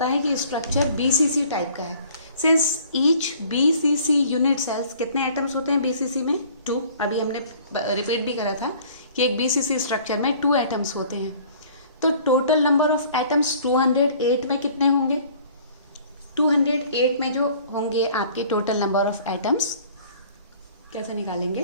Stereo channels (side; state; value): both; inverted; correlation -0.52